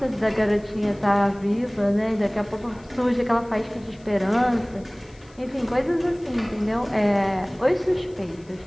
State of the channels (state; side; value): noise; left; hiss, 29 dB below the sound